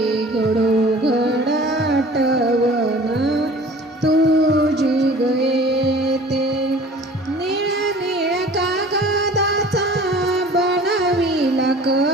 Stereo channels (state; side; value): normal; both; correlation 0.46